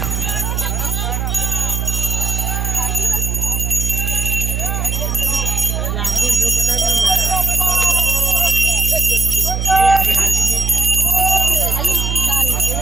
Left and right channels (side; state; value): right; noise; hum, 1 dB below the sound